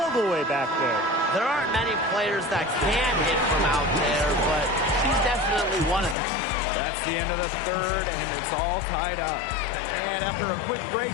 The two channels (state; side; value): drops out; right; at 6.2 s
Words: the way back there. There aren't many players that can hit from out there, but she's definitely one of them. That's the end of the third, and it's all tied up. And after a quick